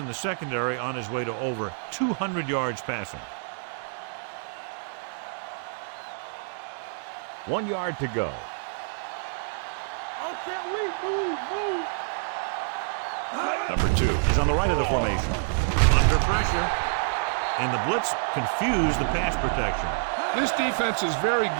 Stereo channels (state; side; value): silent; left; digital silence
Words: the secondary on his way to over 200 yards passing. 1 yard to go. Number 2 is on the right of the formation. Under pressure. And the blitz confused the pass protection. This defense is very